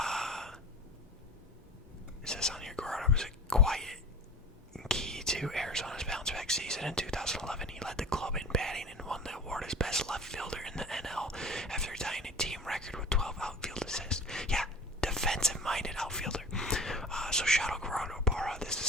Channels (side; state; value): both; normal; correlation 0.38